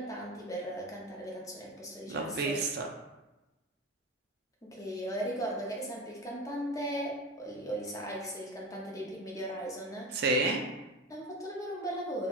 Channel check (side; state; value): both; normal; correlation 0.26